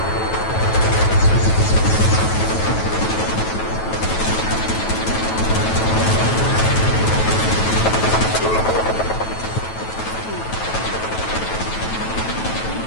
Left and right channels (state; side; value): late; right; 9.2 ms